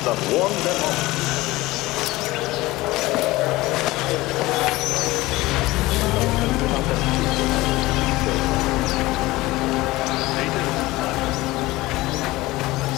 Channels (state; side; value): quieter; right; 19.4 dB